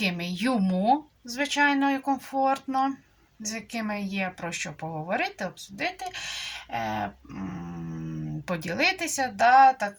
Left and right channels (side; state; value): both; identical; correlation 1.00